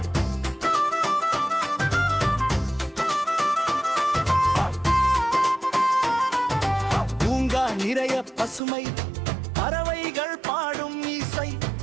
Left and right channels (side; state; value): left; drops out; at 8.6 s